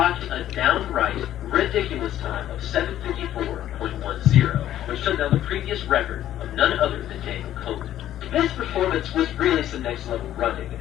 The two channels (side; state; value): right; quieter; 12.2 dB